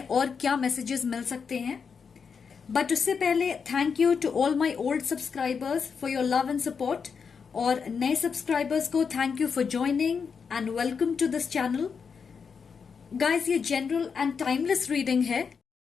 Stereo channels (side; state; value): right; quieter; 6.0 dB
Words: क्या मैसेजेस मिल सकते हैं. बट उससे पहले thank you to all my old subscribers for your love and support, और नए सब्सक्राइबर्स को thank you for joining and welcome to this channel. Guys, ये जनरल एंड टाइमलेस रीडिंग है.